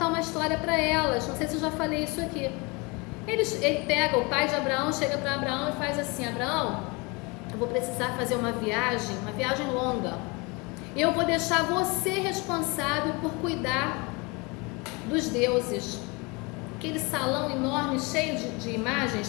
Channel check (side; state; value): right; quieter; 27.8 dB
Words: uma história para elas. Não sei se eu já falei isso aqui. Ele pega, o pai de Abraão chega para Abraão e faz assim: Abraão, eu vou precisar fazer uma viagem longa. Eu vou deixar você responsável por cuidar dos deuses. Aquele salão enorme, cheio de imagens,